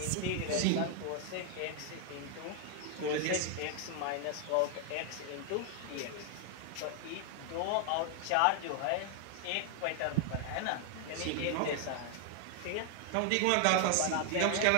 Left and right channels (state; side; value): different; both; correlation 0.00